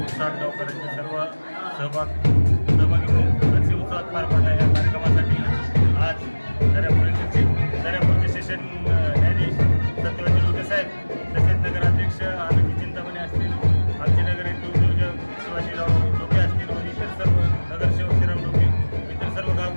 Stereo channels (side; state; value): both; inverted; correlation -1.00